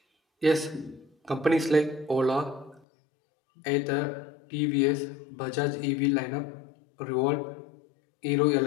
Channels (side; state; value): right; drops out; at 2.8 s